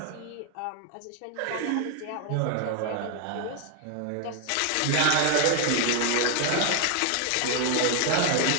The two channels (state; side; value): different; both; correlation 0.01